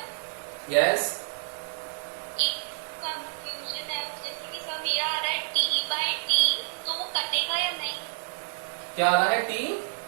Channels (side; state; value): left; silent; digital silence